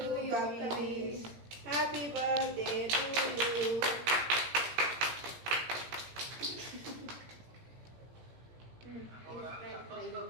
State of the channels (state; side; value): late; left; 17 ms